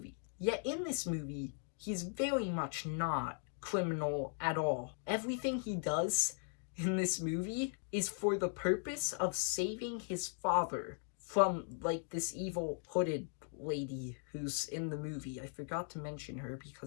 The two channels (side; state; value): right; silent; 52 dB below the other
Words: Yet in this movie, he's very much not criminal at all. Everything he does in this movie is for the purpose of saving his father from, like, this evil hooded lady who's in the movie. I forgot to mention her